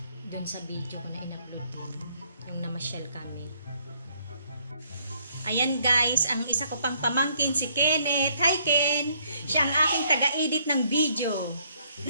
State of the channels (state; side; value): inverted; both; correlation -0.67